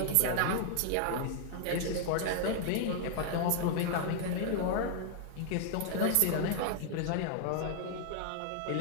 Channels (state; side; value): different; both; correlation -0.01